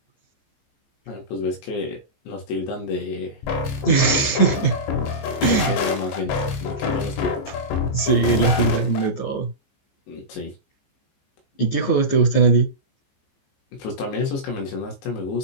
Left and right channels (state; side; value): late; right; 14 ms